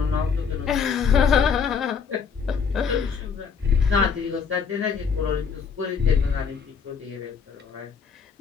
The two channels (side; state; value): right; quieter; 6.2 dB